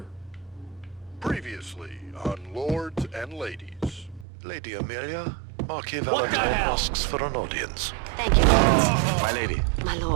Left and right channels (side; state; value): left; drops out; at 4.2 s